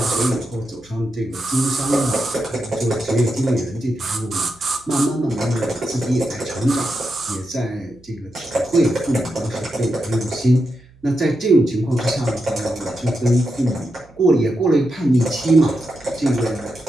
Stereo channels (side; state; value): right; noise; hum, 28 dB below the sound